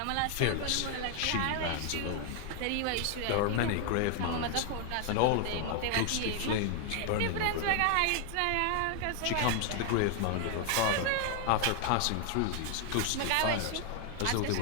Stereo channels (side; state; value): both; different; correlation 0.00